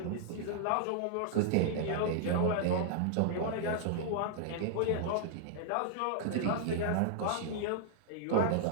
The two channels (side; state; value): both; different; correlation -0.01